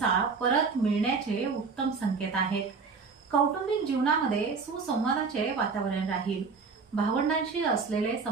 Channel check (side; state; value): left; quieter; 4.9 dB